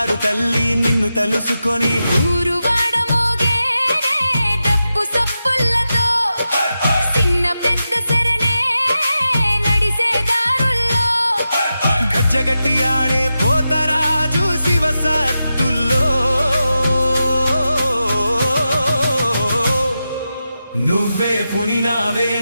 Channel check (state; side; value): inverted; both; correlation -0.90